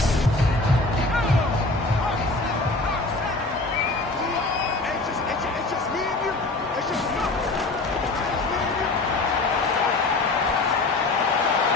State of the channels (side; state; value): right; quieter; 3.2 dB